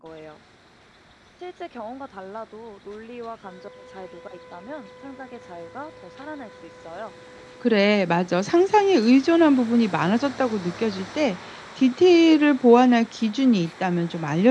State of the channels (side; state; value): both; identical; correlation 1.00